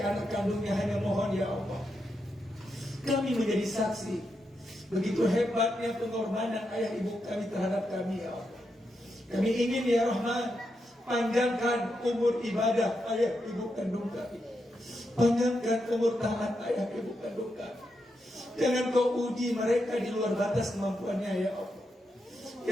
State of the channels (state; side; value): normal; both; correlation 0.84